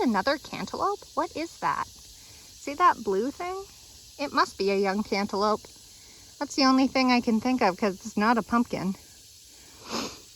cantaloupe? What is that? See that blue thing? It must be a young cantaloupe. That's the only thing I can think of because it's not a pumpkin.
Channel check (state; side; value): identical; both; correlation 1.00